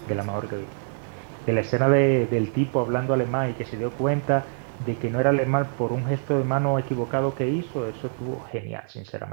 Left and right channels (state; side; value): silent; left; digital silence